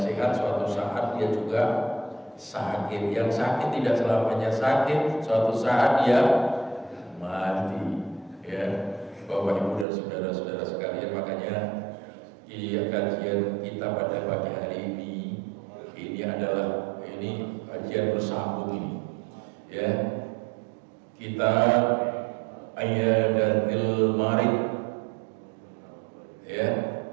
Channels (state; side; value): drops out; left; at 9.9 s